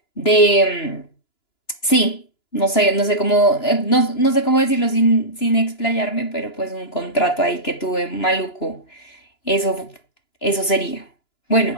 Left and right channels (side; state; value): right; late; 2.9 ms